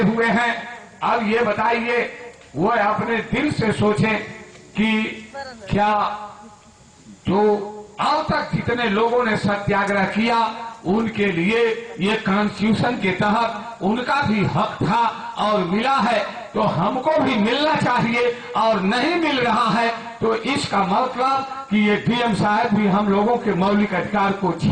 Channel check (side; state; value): both; identical; correlation 1.00